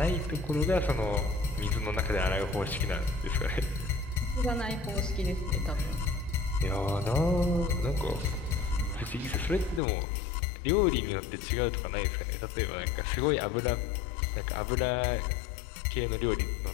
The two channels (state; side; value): drops out; right; at 9.8 s